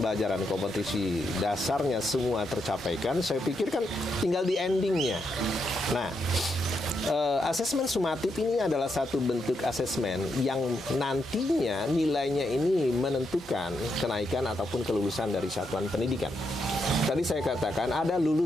kompetensi dasarnya semua tercapaikan, saya pikir kan tinggal di endingnya. Nah, asesmen sumatif ini adalah satu bentuk asesmen yang nantinya nilainya ini menentukan kenaikan ataupun kelulusan dari satuan pendidikan. Tadi saya katakan ada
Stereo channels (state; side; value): normal; both; correlation 0.81